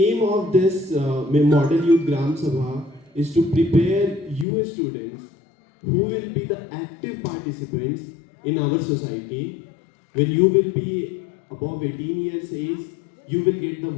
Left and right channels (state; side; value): drops out; right; at 4.5 s